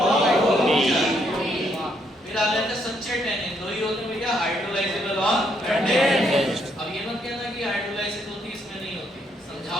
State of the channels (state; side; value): normal; both; correlation 0.73